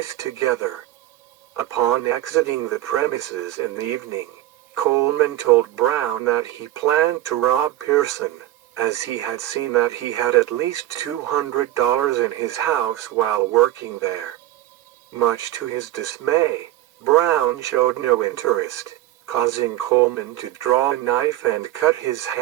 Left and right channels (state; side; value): quieter; left; 14.7 dB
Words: together. Upon exiting the premises in the evening, Coleman told Brown that he planned to rob Pearson, as he had seen that he had at least $200 in his house while working there. Much to his dismay, Brown showed no interest, causing Coleman to draw a knife and cut his